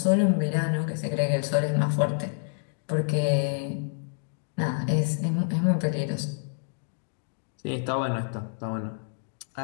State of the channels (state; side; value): silent; right; digital silence